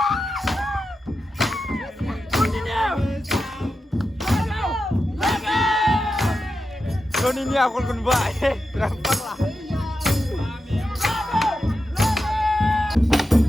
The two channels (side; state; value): both; normal; correlation 0.89